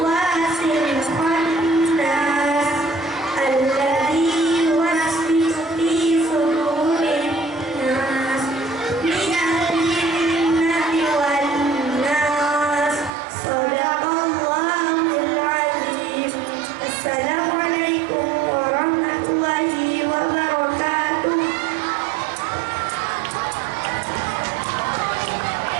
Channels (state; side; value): drops out; left; at 13.2 s